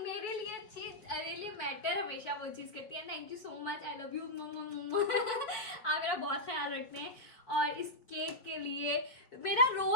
लिए चीज मैटर हमेशा वो चीज़ करती है। Thank you so much, I love you. आप मेरा बहुत ख्याल रखते हैं। और इस केक के लिए मेरा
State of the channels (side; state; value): right; late; 4.8 ms